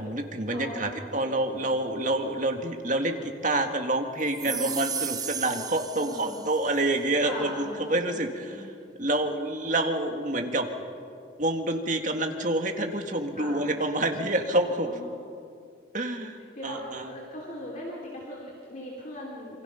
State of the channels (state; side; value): normal; both; correlation 0.16